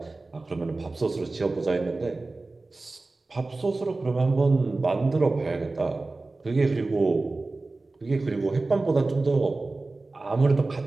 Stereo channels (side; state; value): left; quieter; 3.3 dB